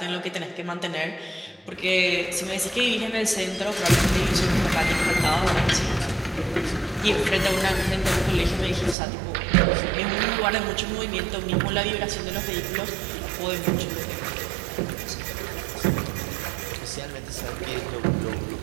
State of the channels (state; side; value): drops out; left; at 9.0 s